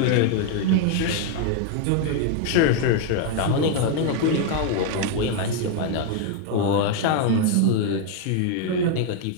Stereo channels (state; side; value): different; both; correlation 0.00